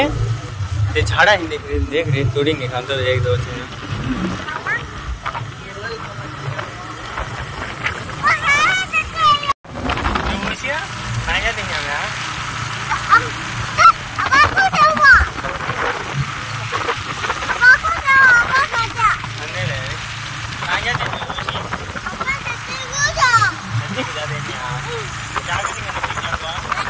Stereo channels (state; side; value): identical; both; correlation 1.00